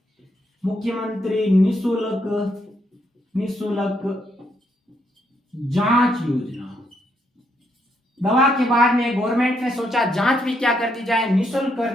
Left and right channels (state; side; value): normal; both; correlation 0.75